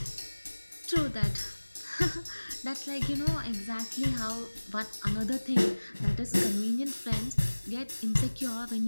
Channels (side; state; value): both; inverted; correlation -1.00